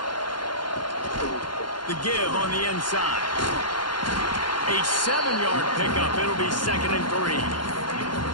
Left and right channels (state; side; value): late; right; 0.71 ms